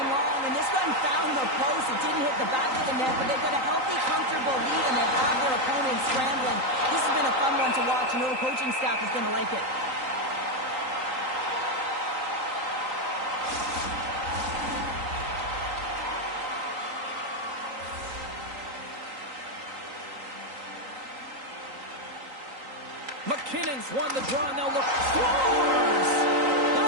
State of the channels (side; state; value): left; late; 3.9 ms